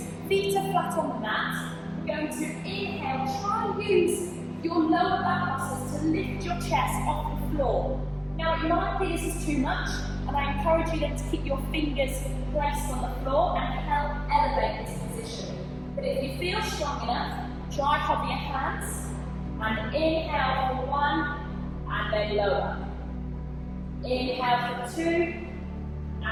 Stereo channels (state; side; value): identical; both; correlation 1.00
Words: Feet are flat on the mat. We're going to inhale, try and use your lower back muscles to lift your chest off the floor. Now it might be this is too much, and I encourage you then to keep your fingers placed on the floor and help elevate this position. But if you feel strong enough, try hover your hands and inhale for 1 and then lower. Inhale for 2